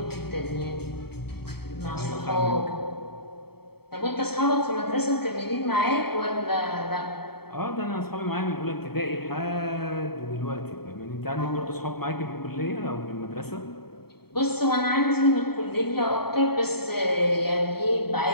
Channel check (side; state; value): right; late; 0.96 ms